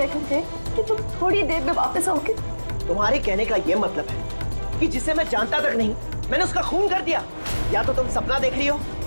थे कि तुम थोड़ी देर में वापस आओगे। तुम्हारे कहने का ये मतलब है कि जिसे मैं जानता तक नहीं मैंने उसका खून कर दिया? या तो तुम सपना देख रही हो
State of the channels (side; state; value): both; inverted; correlation -1.00